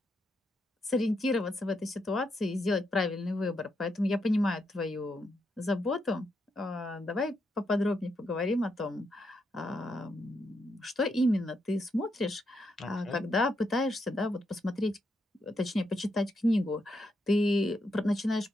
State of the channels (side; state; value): both; normal; correlation 0.81